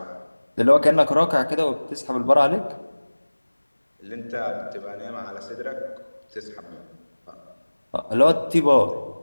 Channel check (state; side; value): inverted; both; correlation -1.00